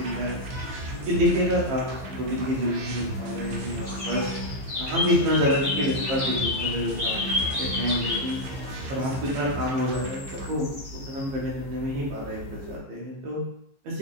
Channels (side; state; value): left; late; 15 ms